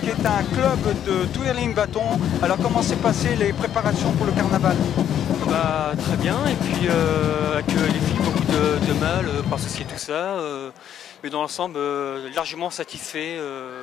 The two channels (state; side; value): quieter; right; 10.0 dB